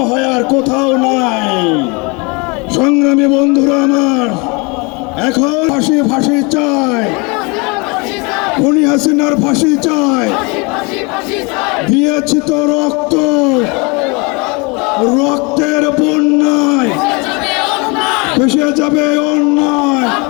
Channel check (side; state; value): right; quieter; 29.2 dB